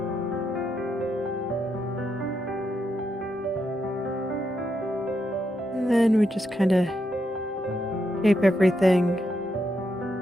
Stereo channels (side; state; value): both; normal; correlation 0.81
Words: And then we just kind of shape everything.